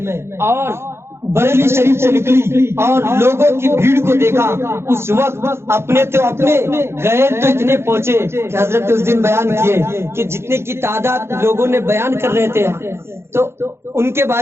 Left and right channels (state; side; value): late; left; 0.12 ms